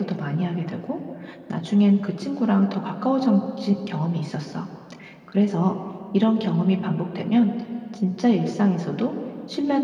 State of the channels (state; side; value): identical; both; correlation 1.00